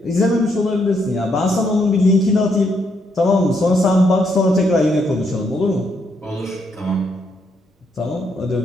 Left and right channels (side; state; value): both; normal; correlation 0.75